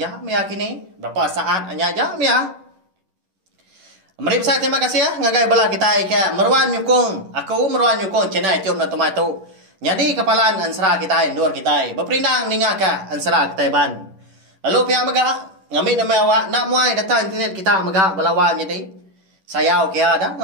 mia kini berapa saat aja mia. Mari saya terima kasih ya ngagai bala kita ke meruan nyukung aku meruan nyukung channel YouTube Nak Temai tahu. Jadi kepalaan Ensera kita endor kita berperindang ningaka Ensera kita ban. Lalu pihak mega ngambil nama awak nak muai data internet kita mega belawan jadi. Saya okey ada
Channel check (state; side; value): late; left; 10 ms